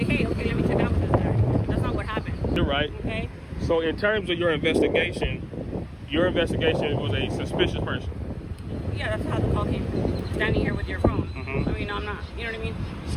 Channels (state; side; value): identical; both; correlation 1.00